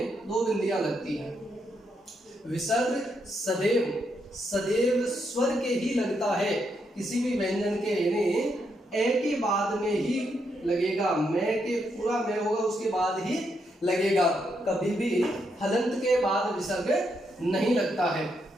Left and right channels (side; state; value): both; normal; correlation 0.79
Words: दो बिंदियां लगती हैं। विसर्ग सदैव स्वर के ही लगता है, किसी भी व्यंजन के, यानी ए के बाद में ही लगेगा, मैं के पूरा मैं होगा उसके बाद ही लगेगा, कभी भी हलंत के बाद विसर्ग नहीं लगता है।